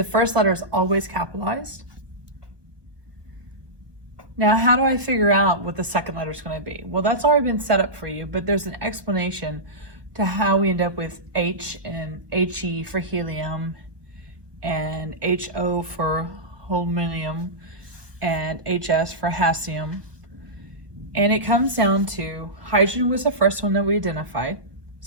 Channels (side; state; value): left; late; 1.4 ms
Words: first letter is always capitalized. Now, how do I figure out what the second letter is going to be? Well, that's already been set up for you, but there's an explanation to how we end up with H and He for helium, and HO for holmium, and HS for hassium. And it comes down to hydrogen was the first one that we identified,